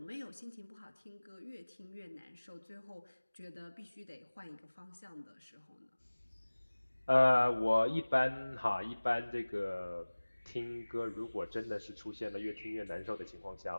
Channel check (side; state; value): both; inverted; correlation -1.00